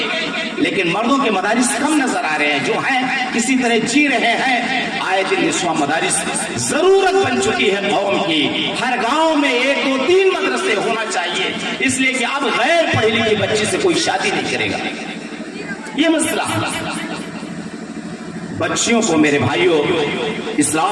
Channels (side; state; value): both; identical; correlation 1.00